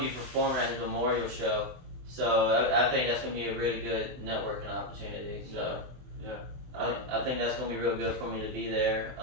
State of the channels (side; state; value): left; late; 23 ms